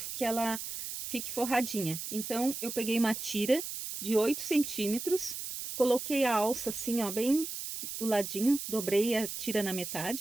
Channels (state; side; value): noise; right; hiss, 6 dB below the sound